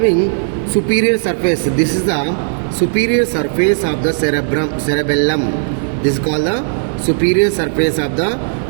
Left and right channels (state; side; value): silent; left; digital silence